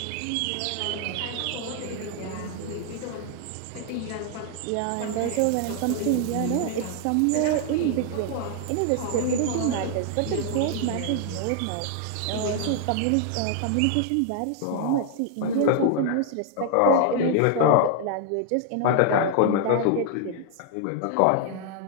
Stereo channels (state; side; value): different; both; correlation 0.00